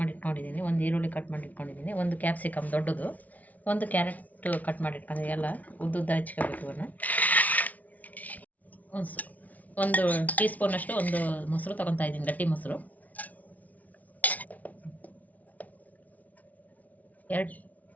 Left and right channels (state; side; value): late; right; 0.073 ms